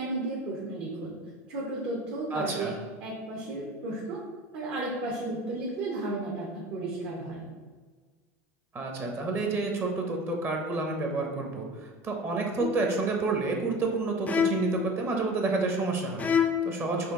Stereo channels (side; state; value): both; normal; correlation 0.39